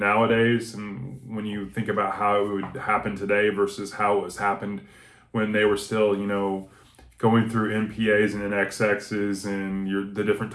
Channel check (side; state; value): both; identical; correlation 1.00